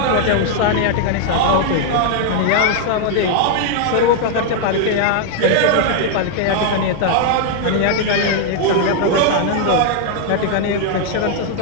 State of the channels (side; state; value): both; different; correlation 0.00